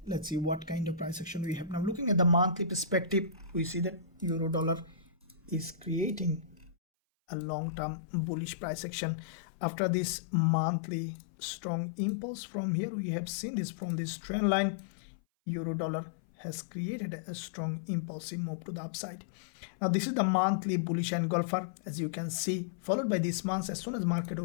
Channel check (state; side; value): drops out; right; at 6.8 s